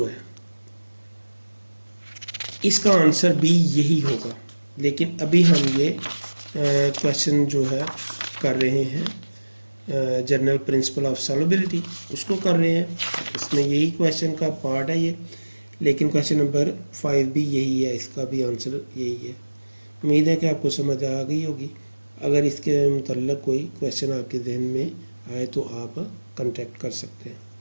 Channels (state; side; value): inverted; both; correlation -1.00